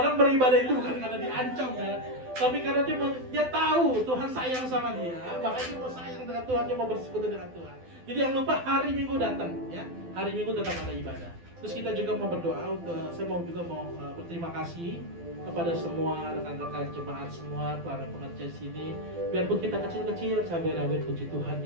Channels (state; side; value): late; left; 12 ms